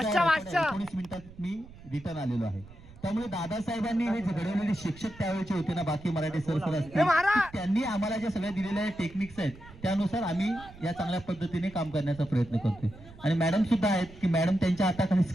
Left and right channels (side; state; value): right; noise; rumble, 19 dB below the sound